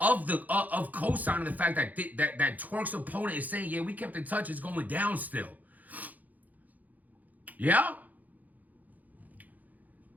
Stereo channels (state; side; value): late; left; 0.080 ms